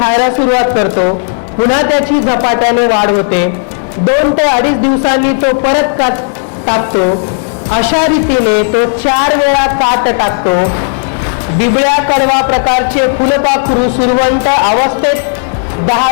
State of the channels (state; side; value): silent; right; digital silence